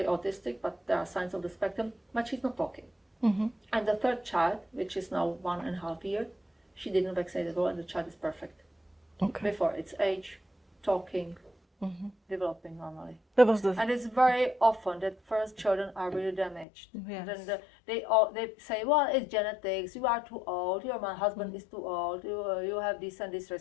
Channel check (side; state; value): right; drops out; at 16.7 s